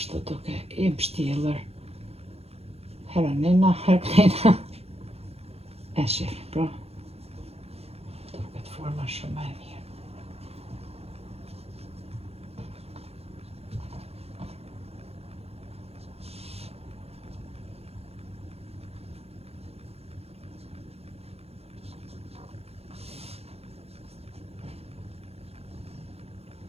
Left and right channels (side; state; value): left; late; 0.29 ms